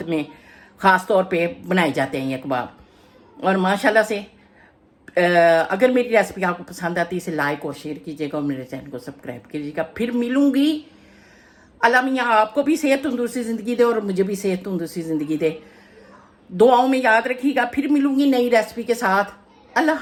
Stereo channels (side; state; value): both; identical; correlation 1.00